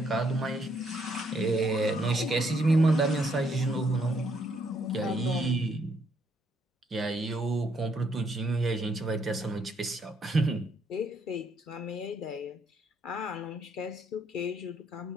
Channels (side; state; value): both; normal; correlation 0.71